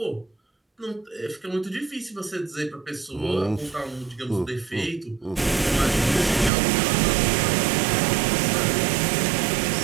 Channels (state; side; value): drops out; left; at 6.5 s